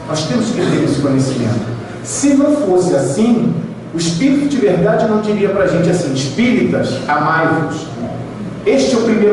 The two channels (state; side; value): identical; both; correlation 1.00